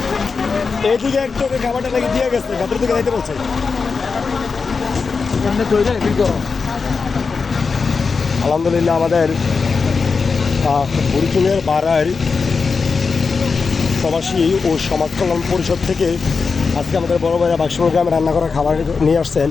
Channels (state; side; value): quieter; right; 4.9 dB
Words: এইদিকে একটু খাবারটা নাকি দিয়ে গেছে, ভেতর দিকে যাইতে বলছে। আলহামদুলিল্লাহ আমাদের বুড়িচুঙের বাড়ার প্রবাসী ও সমাজ কল্যাণ পরিষদ থেকে আজকে আমাদের বড় ভাইরা বাক্সমুল গ্রামে রান্না করা খাবার নিয়ে আসছেন।